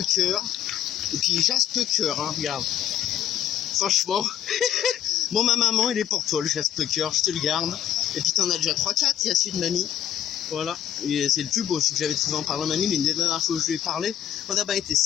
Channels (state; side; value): quieter; right; 10.5 dB